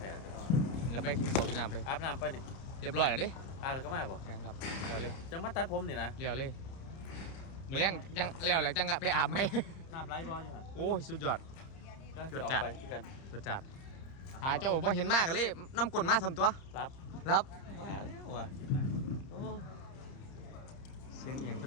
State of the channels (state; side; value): late; right; 30 ms